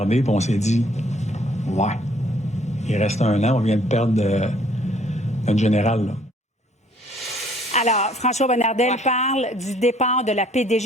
et on s'est dit, ouais, il reste 1 an, on vient de perdre notre général. Là. Alors, François Bonnardel parle du départ de la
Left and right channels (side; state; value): both; normal; correlation 0.61